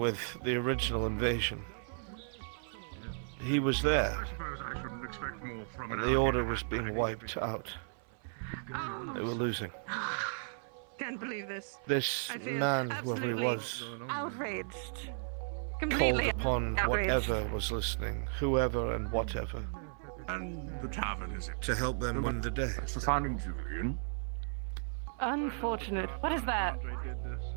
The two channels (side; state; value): left; silent; 54 dB below the other